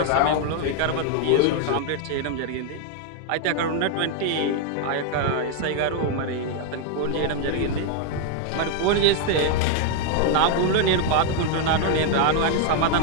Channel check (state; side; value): different; both; correlation 0.01